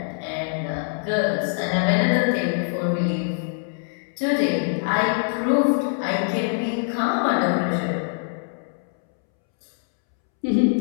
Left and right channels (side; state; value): right; silent; 63 dB below the other